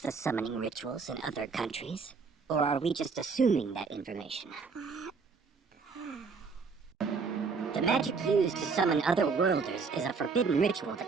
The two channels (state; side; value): quieter; left; 5.0 dB